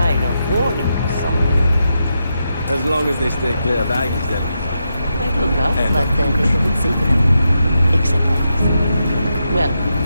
a warning or something. As long as they stay clear of Aggies, then. Might look rough, but then they will safe enough. Except Aggies. Well,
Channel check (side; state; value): both; inverted; correlation -0.85